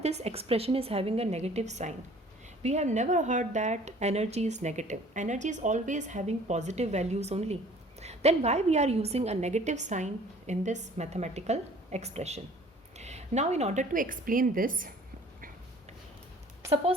expression is having a negative sign? We have never heard that energy is negative. Energy is always having positive values only. Then why we are using a negative sign in this mathematical expression? Now in order to explain this,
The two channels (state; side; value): normal; both; correlation 0.52